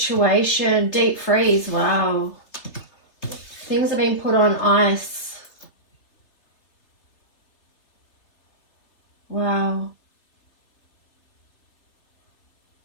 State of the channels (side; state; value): right; late; 3.3 ms